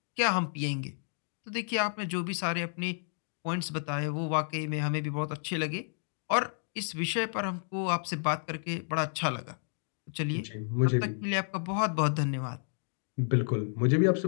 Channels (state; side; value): silent; right; digital silence